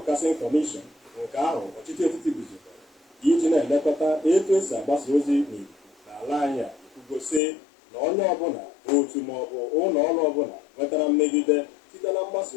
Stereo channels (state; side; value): drops out; right; at 7.4 s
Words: Commission nke ahụ ọchịchị etiti guzobere iji na-elekọta etu esi agbasa ozi n'ikuku n'ala anyị a ekwugosi na onye ọbụla otu maọbụ ụlọ ọrụ ọbụla nwetara mmegide site na mgbasa